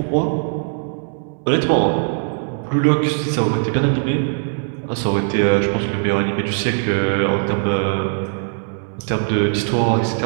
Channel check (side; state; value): left; silent; 58 dB below the other